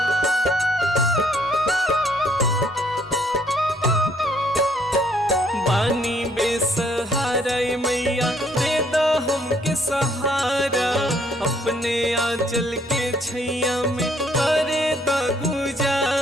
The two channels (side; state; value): both; normal; correlation 0.66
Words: पानी बेसहारा मैया दे दो हमके सहारा, अपने आंचल के छैया में करे द